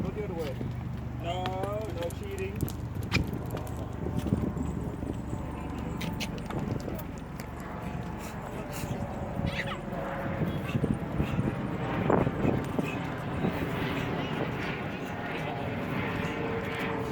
Go the other way. No, no cheating.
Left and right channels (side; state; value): both; identical; correlation 1.00